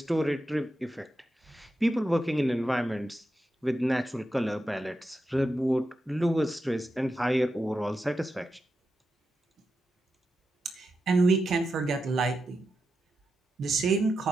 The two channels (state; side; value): normal; both; correlation 0.88